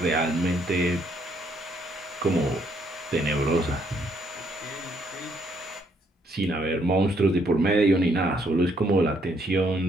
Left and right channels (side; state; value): both; normal; correlation 0.70